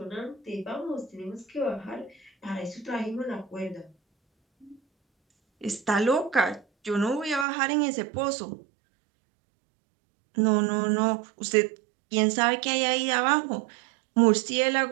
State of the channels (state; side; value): drops out; left; at 7.5 s